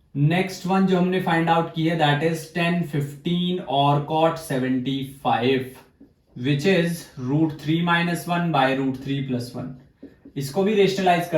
नेक्स्ट वन जो हमने फाइंड आउट की है दैट इज 10, 15 और cot 75, विच इज √3 - 1 by √3 + 1। इसको भी रेशनलाइज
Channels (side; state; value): both; identical; correlation 1.00